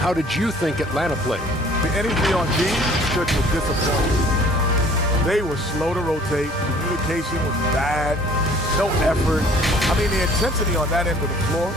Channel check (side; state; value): both; normal; correlation 0.53